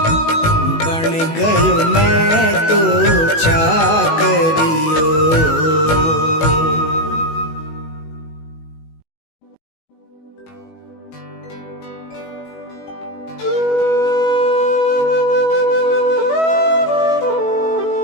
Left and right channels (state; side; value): late; right; 19 ms